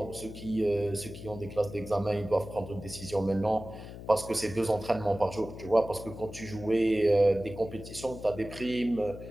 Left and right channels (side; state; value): left; noise; hum, 12 dB below the sound